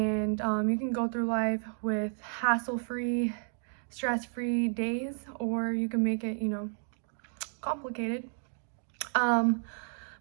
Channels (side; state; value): left; silent; 57 dB below the other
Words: you can go through life with hassle-free, stress-free days, or you can make it, complicated. um